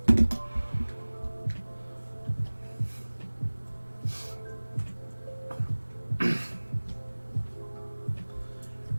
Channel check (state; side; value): inverted; both; correlation -1.00